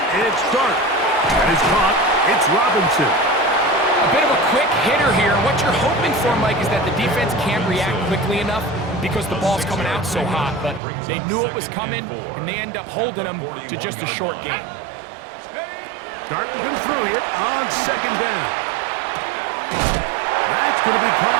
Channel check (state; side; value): drops out; left; at 10.8 s